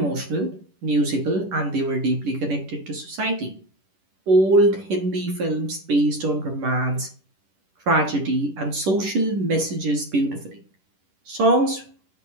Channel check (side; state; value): left; late; 11 ms